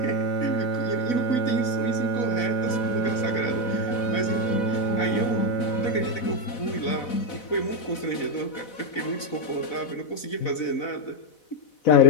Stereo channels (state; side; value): late; right; 4.0 ms